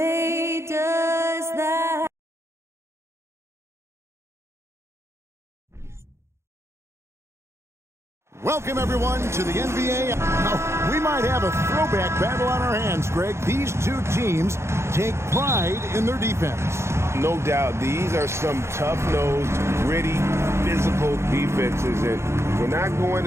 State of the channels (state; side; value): late; left; 0.13 ms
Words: does that? Welcome, everyone, to the NBA. Now, we might have a throwback battle on our hands, Greg. These two teams take pride in their defense. No doubt, these are some tough-nosed, gritty, physical defenses, and we're not going